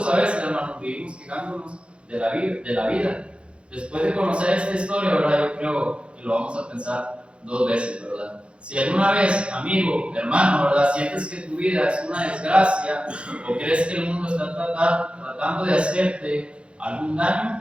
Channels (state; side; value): late; left; 0.058 ms